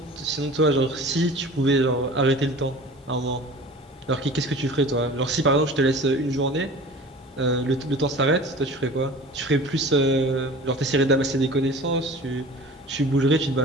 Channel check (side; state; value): both; normal; correlation 0.41